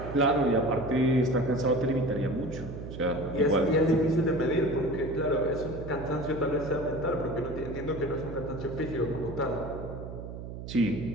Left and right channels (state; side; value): noise; right; hum, 10 dB below the sound